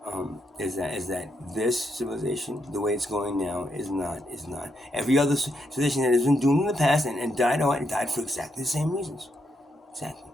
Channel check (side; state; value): both; normal; correlation 0.80